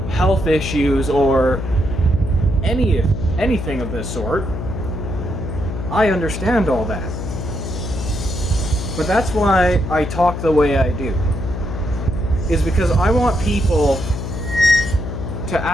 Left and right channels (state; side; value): noise; left; hum, 5 dB below the sound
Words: health issues or anything of this sort. I understand all that. But that's why I talk the way I do. Is because I want people to